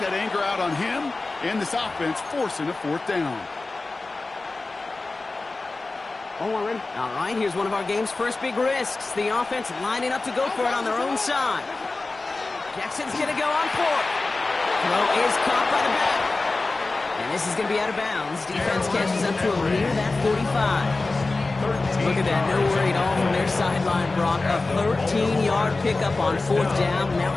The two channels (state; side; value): quieter; right; 3.4 dB